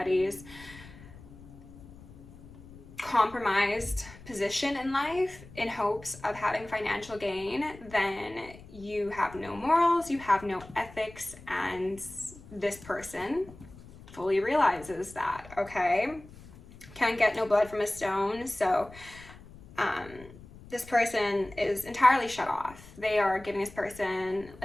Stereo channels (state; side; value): noise; left; rumble, 19 dB below the sound